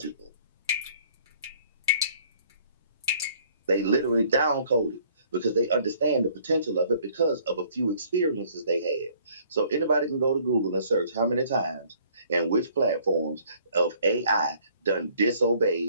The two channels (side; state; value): both; inverted; correlation -0.58